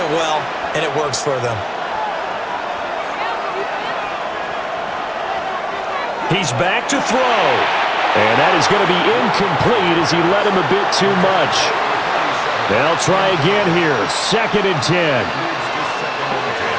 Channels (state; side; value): identical; both; correlation 1.00